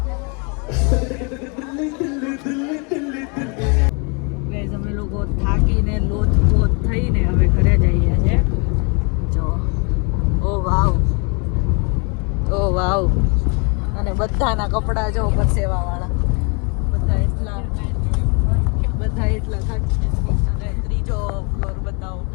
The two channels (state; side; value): quieter; right; 33.7 dB